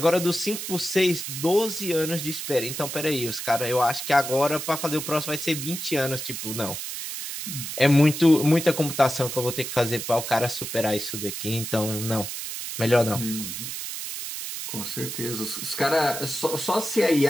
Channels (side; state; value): right; noise; hiss, 6 dB below the sound